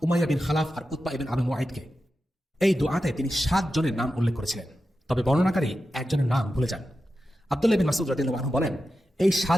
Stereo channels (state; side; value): normal; both; correlation 0.91